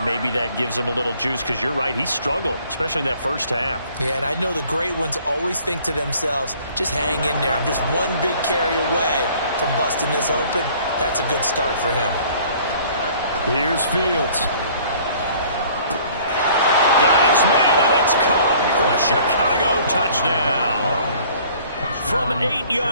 that gives him a little juice, because you're right, he struggled, especially in that first half. Yeah, and I know the great ones always think to themselves, just hang in there. I'm just one big carry away from busting this open. That's a good start for him. Here's Fields. Got his man, and it's caught for a Chicago touchdown. From 8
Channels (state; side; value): inverted; both; correlation -0.54